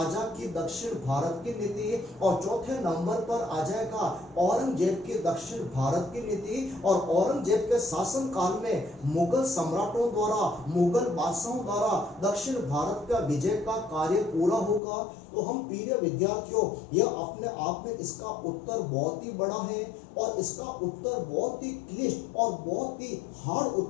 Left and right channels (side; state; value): right; drops out; at 14.8 s